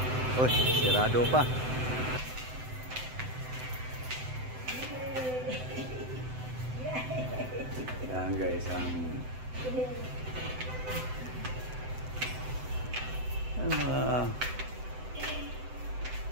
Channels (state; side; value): late; left; 7.8 ms